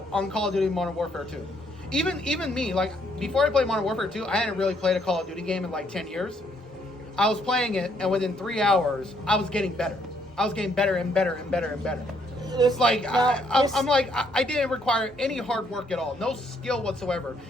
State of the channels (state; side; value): normal; both; correlation 0.70